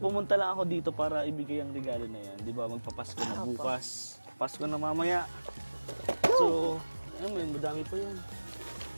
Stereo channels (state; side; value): inverted; both; correlation -1.00